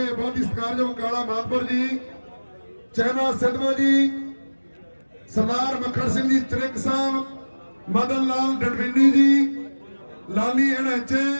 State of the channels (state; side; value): inverted; both; correlation -1.00